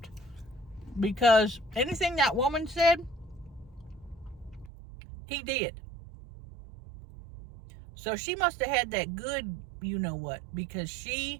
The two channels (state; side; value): drops out; left; at 4.7 s